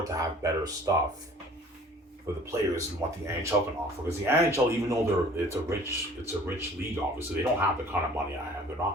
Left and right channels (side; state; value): both; normal; correlation 0.50